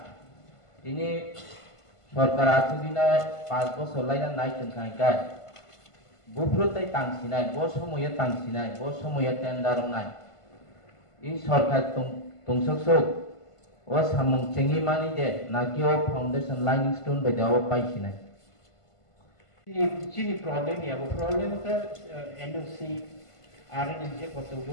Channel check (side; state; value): right; late; 1.5 ms